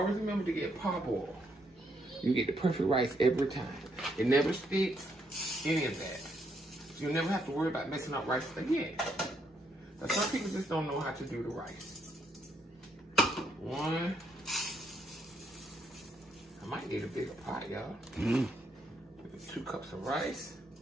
remember to get pop oil. You get the perfect rice every time. It never sticks, any of that. You'll never have to worry about messing up rice again. Now some people just don't know how to do the rice. One. I might need a bigger pot, y'all. 2 cups of rice.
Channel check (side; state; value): both; normal; correlation 0.75